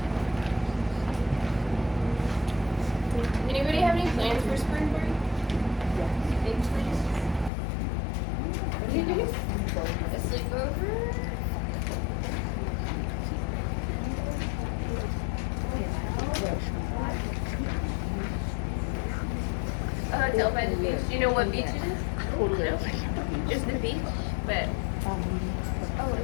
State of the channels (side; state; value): right; drops out; at 7.5 s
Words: Anybody have any plans for spring break? Big plans? What do you do? A sleepover? A hotel by the beach. Do you know what beach it is? No? Just the beach? But